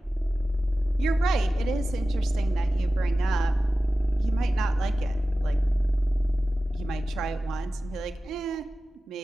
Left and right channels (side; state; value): both; normal; correlation 0.95